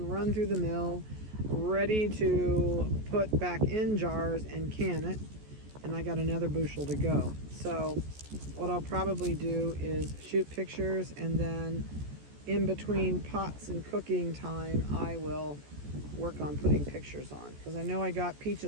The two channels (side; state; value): left; late; 14 ms